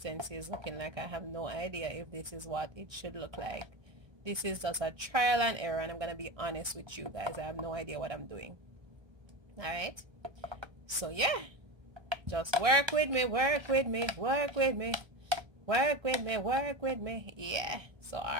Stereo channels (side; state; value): left; late; 1.3 ms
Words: is looking like. I have no idea if this is what it should look like. This is just a trial and error, and I'm gonna be honest with you guys, I have no idea what I'm doing. All right, so yeah, just work with me, work with me, work with me, work with me, work with me. Yeah, so